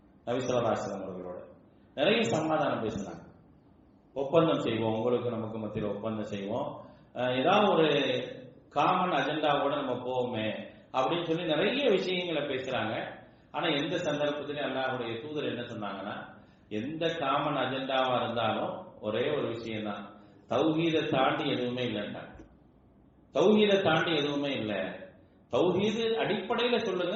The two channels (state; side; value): identical; both; correlation 1.00